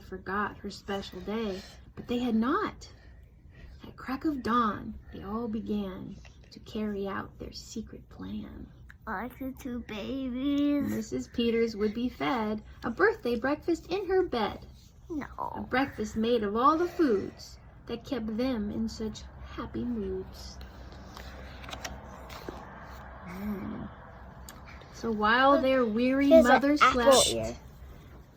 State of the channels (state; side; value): identical; both; correlation 1.00